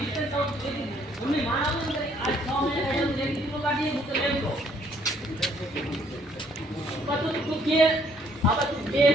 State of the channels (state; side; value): normal; both; correlation 0.65